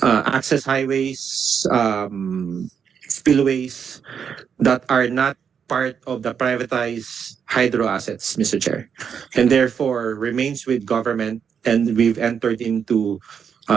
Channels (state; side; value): quieter; left; 7.2 dB